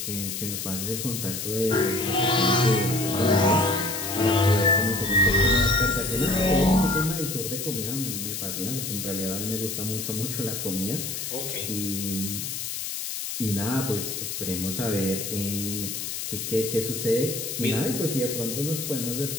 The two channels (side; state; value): left; noise; hiss, 5 dB below the sound